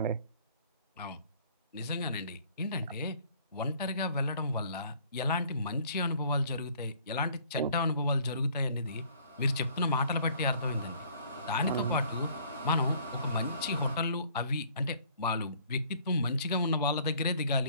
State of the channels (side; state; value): both; inverted; correlation -0.57